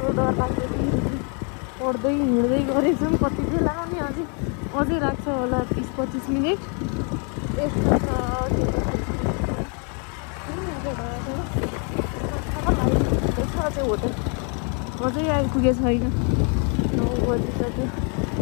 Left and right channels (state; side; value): quieter; right; 38.6 dB